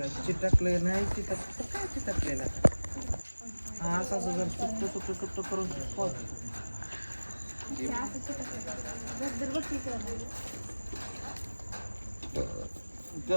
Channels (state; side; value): inverted; both; correlation -1.00